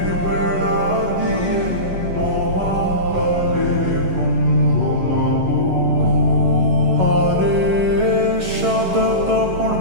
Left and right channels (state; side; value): late; left; 11 ms